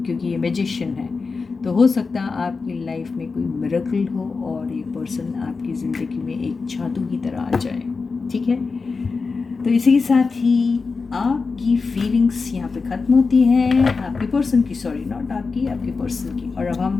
क्योंकि ये मैजिशियन है। तो हो सकता है आपकी लाइफ में कोई मिरेकल हो और ये पर्सन आपकी ज़िंदगी में एक जादू की तरह आ जाए, ठीक है। तो इसी के साथ ही आपकी फीलिंग्स यहाँ पे ख़त्म होती हैं, आपके पर्सन की, सॉरी नॉट आपकी, आपके पर्सन की। और अब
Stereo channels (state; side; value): quieter; right; 4.5 dB